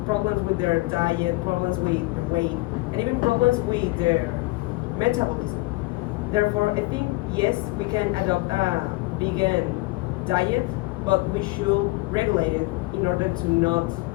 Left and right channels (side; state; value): right; quieter; 22.4 dB